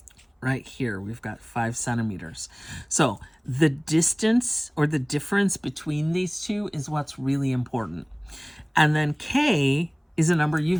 Right here, we've got 5 centimeters. So the distance or the difference between these two is what's really important. And then K is a number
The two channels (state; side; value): identical; both; correlation 1.00